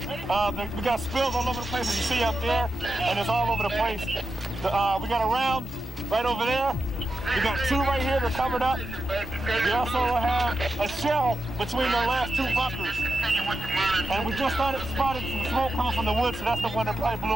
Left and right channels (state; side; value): normal; both; correlation 0.89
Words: We got spills all over the place, as you see up there, and it's all over the place. We got a round right over there. We got 2 right here that are covered up. We also have a shell between the last 2 bunkers. And we just spotted some smoke coming from the woods, so that's the one that probably blew